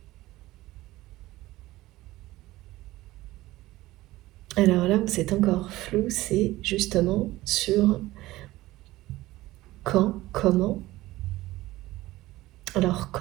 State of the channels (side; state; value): left; quieter; 17.6 dB